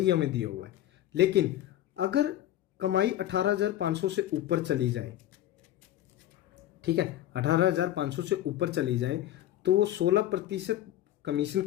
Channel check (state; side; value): quieter; right; 12.9 dB